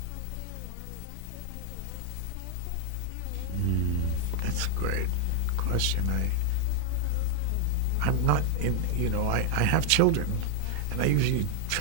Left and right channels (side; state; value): both; different; correlation 0.00